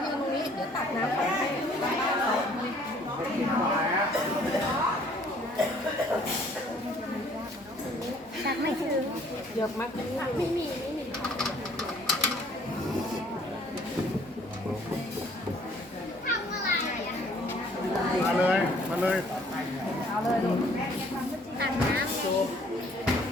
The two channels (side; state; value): both; normal; correlation 0.59